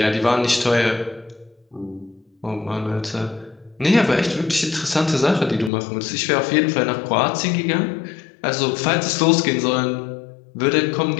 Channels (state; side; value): drops out; right; at 5.7 s